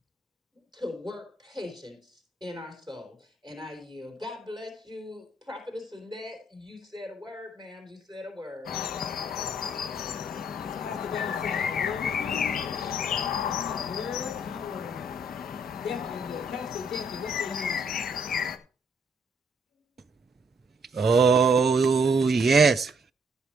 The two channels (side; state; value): both; normal; correlation 0.68